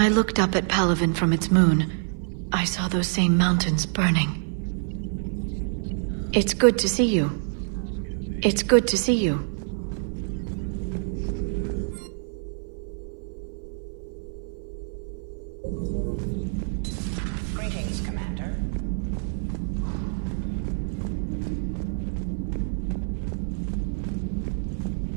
looked up at Palavin from its moon, I saw those same mountains burning. It's good to see you. It's good to see you. Greetings, Commander.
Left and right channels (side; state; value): left; silent; 57 dB below the other